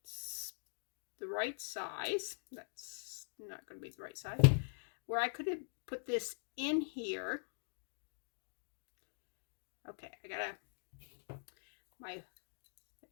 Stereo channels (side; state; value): right; silent; digital silence